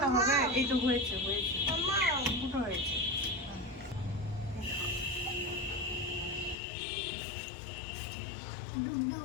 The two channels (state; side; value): drops out; right; at 6.6 s